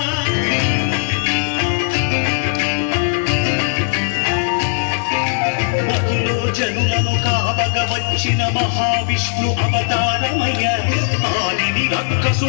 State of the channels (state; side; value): silent; right; digital silence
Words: మధులో జనులను కావగ వచ్చిన మహావిష్ణు అవతారమయ్య, ఆదిని